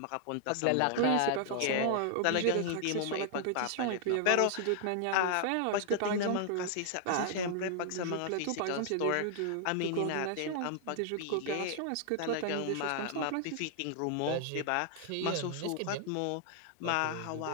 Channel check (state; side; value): different; both; correlation 0.00